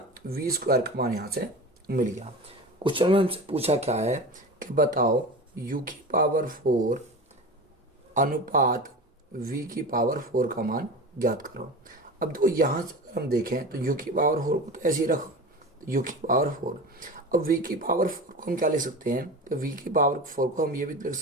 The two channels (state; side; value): normal; both; correlation 0.31